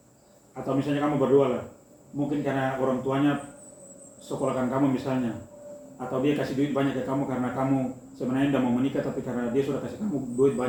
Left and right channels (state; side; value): identical; both; correlation 1.00